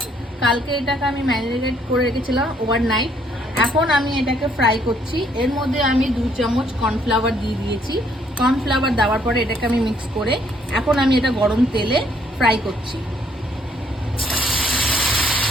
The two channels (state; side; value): normal; both; correlation 0.67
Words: কালকে এটাকে আমি ম্যারিনেট করে রেখেছিলাম ওভারনাইট। এখন আমি এটাকে ফ্রাই করছি। এর মধ্যে আমি 2 চামচ কর্নফ্লাওয়ার দিয়ে দিয়েছি। কর্নফ্লাওয়ার দেওয়ার পরে এটাকে আমি মিক্স করে এখন আমি এটা গরম তেলে ফ্রাই করছি।